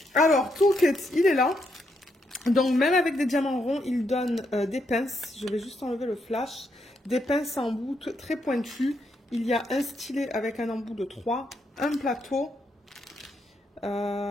Alors toolkit il est là, donc même avec des diamants ronds il donne des pinces. Je vais juste enlever le flash, des pinces en bout très pointues. Il y a un stylet avec un embout de 3, un plateau,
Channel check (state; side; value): normal; both; correlation 0.78